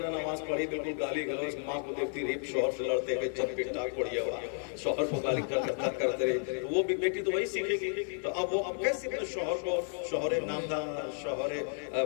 نماز پڑھی, بالکل گالی گلوچ, ماں کو دیکھتی رہی شوہر سے لڑتے ہوئے چند پٹ ٹاک پڑیا ہوا, شوہر کو گالی کرتے رہے, تو وہ بھی بیٹی تو وہی سیکھے گی. تو اب وہ اب کیسے اپنے شوہر کو شوہر نامدار, شوہر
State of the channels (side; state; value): right; silent; 56 dB below the other